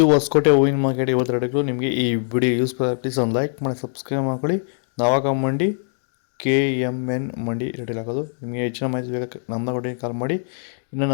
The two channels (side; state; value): right; silent; digital silence